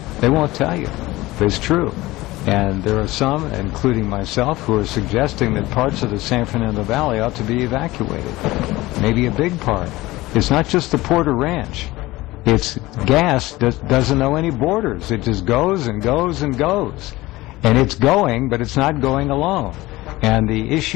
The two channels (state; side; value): quieter; right; 19.0 dB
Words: They won't tell you. But it's true. And there are some, including myself, who are suggesting that parts of the San Fernando Valley ought to be evacuated. Maybe a big part. It's not just the Porter Ranch. It's gas that doesn't know any borders. It just goes and goes and goes. And it's going, but it's not going alone. And the